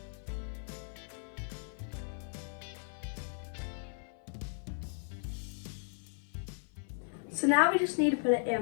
So now we just need to put it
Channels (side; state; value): right; silent; 54 dB below the other